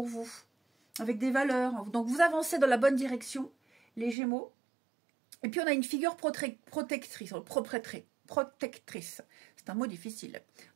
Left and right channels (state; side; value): drops out; left; at 4.2 s